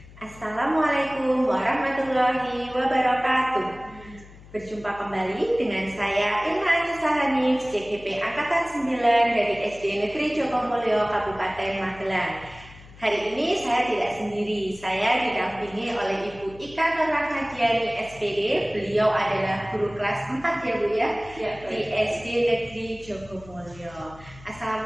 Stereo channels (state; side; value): noise; left; hum, 20 dB below the sound